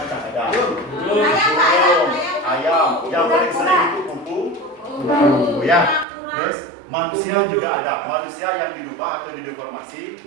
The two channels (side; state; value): left; drops out; at 6.1 s